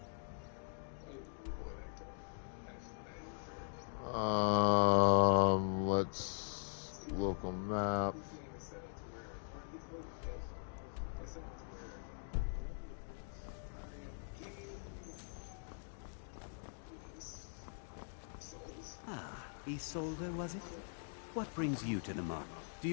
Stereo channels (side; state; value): right; silent; digital silence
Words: Let's local map. Ah, Isolde, was it? What brings you to the market? Do